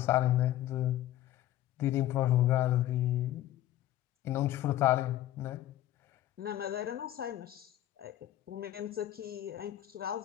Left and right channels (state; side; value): quieter; right; 13.5 dB